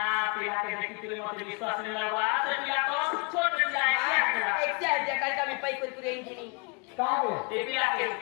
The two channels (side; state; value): right; quieter; 32.0 dB